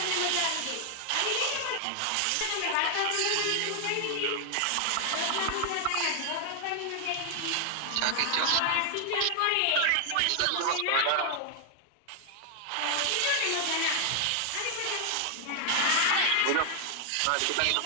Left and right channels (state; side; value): different; both; correlation 0.00